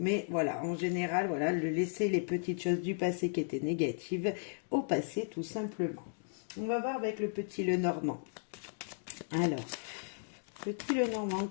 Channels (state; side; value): silent; right; digital silence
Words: voilà, en général, voilà, le laisser les petites choses du passé qui étaient négatives au passé tout simplement. On va voir avec le petit Lenormand. Alors, petit Lenormand,